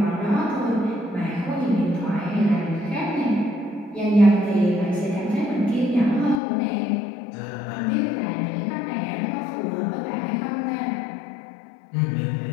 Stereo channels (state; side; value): drops out; right; at 6.4 s